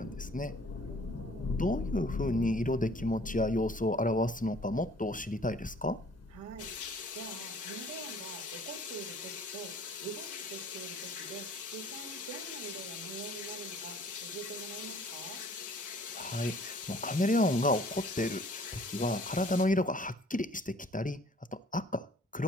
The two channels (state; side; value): normal; both; correlation 0.54